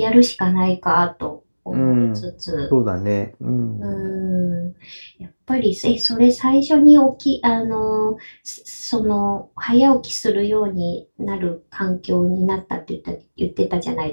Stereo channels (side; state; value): both; inverted; correlation -1.00